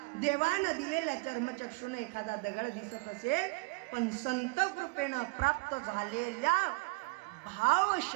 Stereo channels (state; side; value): quieter; left; 27.7 dB